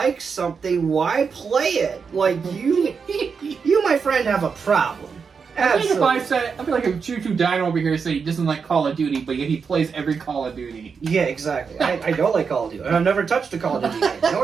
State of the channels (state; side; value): quieter; left; 5.7 dB